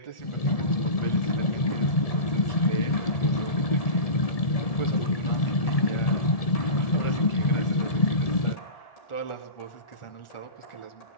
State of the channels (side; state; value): right; late; 1.7 ms